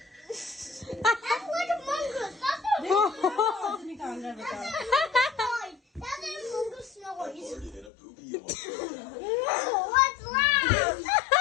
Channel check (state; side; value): drops out; right; at 7.9 s